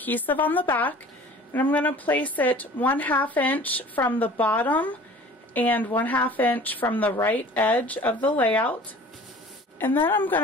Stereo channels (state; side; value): normal; both; correlation 0.45